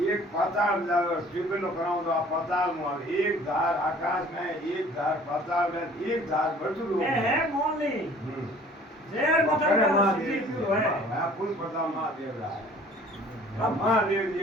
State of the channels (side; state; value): both; normal; correlation 0.51